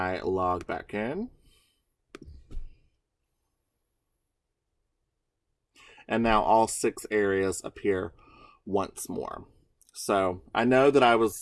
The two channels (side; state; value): both; identical; correlation 1.00